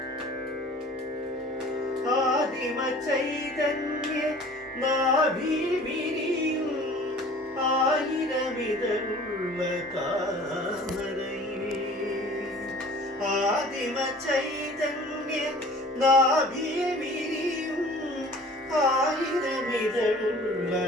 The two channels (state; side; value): normal; both; correlation 0.46